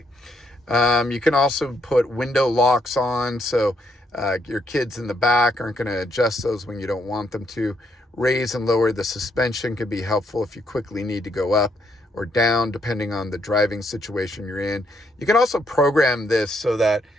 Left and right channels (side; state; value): both; normal; correlation 0.74